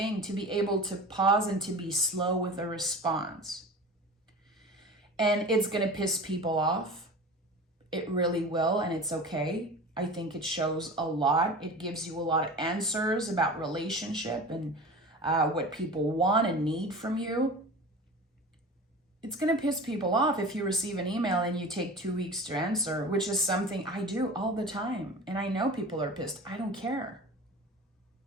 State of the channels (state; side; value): normal; both; correlation 0.35